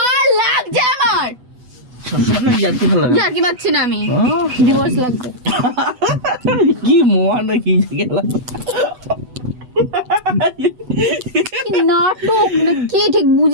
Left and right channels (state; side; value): late; left; 8.0 ms